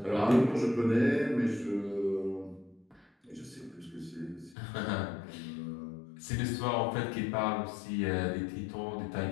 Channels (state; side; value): drops out; right; at 4.5 s